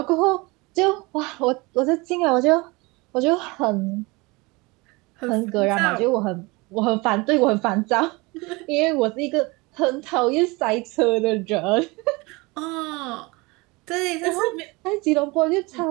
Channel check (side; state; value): left; quieter; 25.0 dB